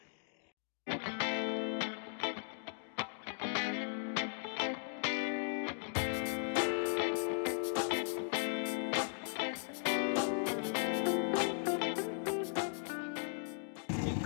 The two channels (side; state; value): right; silent; digital silence